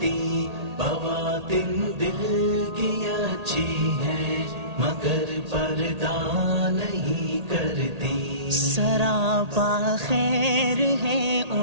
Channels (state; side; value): late; left; 1.8 ms